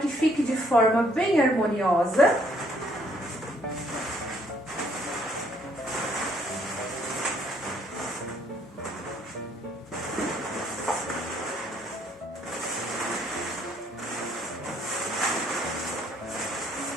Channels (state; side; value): normal; both; correlation 0.65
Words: fique de forma bem harmoniosa.